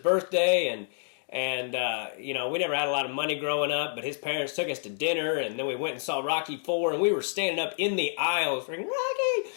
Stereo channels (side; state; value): right; silent; 57 dB below the other